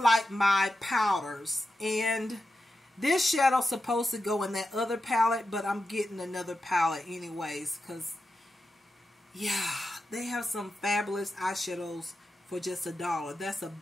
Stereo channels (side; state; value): both; normal; correlation 0.90